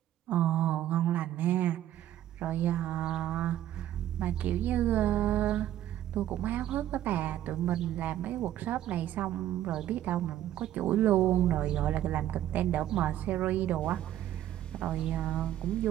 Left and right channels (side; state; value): left; quieter; 12.3 dB